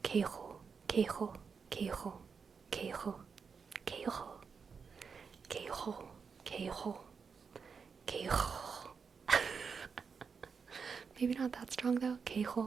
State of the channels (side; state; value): left; quieter; 5.7 dB